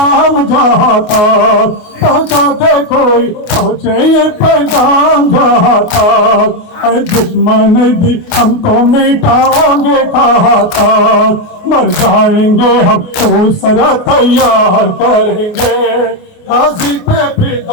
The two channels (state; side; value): late; right; 28 ms